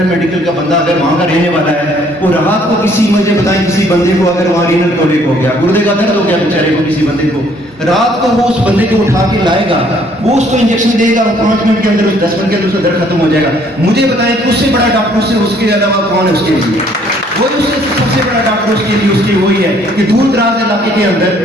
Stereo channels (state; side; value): normal; both; correlation 0.62